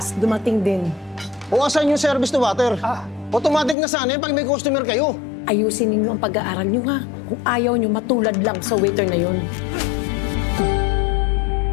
dumating din. O asan yung service to water? Automatic na sana pag may customer kayo. Ayusin ninyo ang pag-aaral nyo ha. Kung ayaw nyo, matulad lang sa waiter na yun.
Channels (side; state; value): right; drops out; at 3.8 s